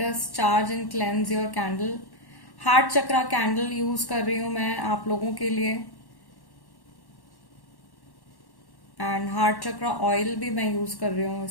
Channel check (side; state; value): right; late; 1.1 ms